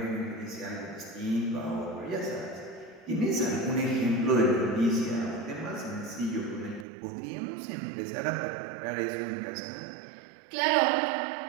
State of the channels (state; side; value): drops out; left; at 6.9 s